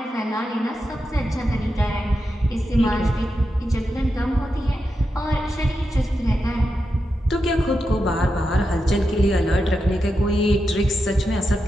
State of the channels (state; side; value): normal; both; correlation 0.88